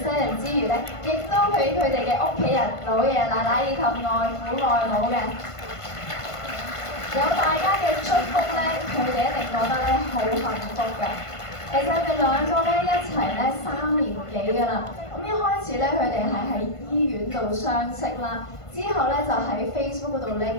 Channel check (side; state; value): right; late; 1.5 ms